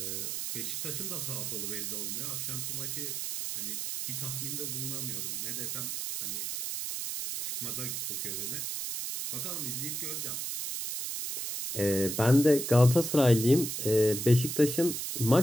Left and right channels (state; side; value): noise; right; hiss, 3 dB below the sound